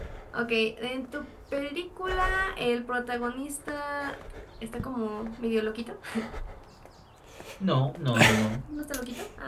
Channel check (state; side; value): identical; both; correlation 1.00